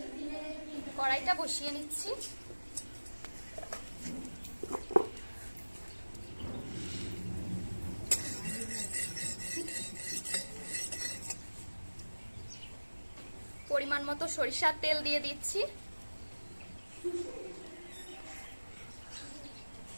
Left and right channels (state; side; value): inverted; both; correlation -1.00